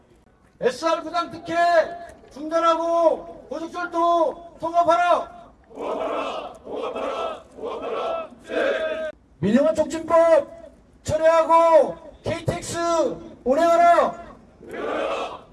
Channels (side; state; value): both; identical; correlation 1.00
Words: SR 부당 특혜 중단하고 고속철도 통합하라. 민영화 촉진법 철회하고 KTX 운행하라.